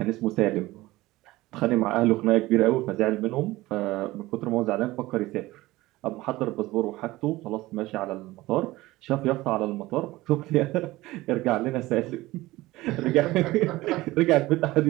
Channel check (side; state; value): left; quieter; 18.6 dB